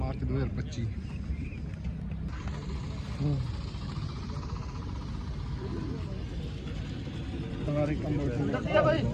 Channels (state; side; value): identical; both; correlation 1.00